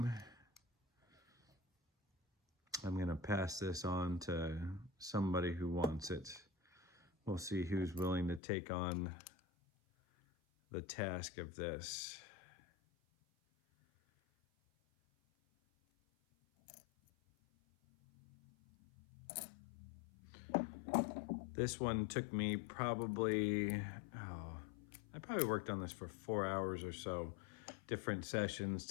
I'm going to pass this on to somebody who wants it. We'll see who's willing to take on the task of this. This one took me probably, I probably worked on this for 4 hours or so, different sessions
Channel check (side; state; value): right; drops out; at 8.4 s